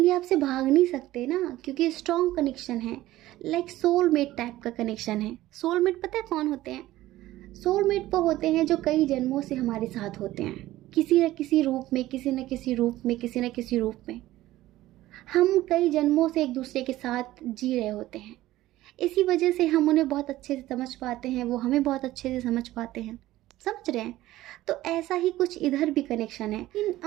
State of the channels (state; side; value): quieter; left; 15.8 dB